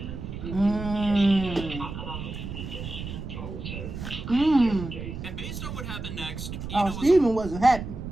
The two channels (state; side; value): noise; right; rumble, 8 dB below the sound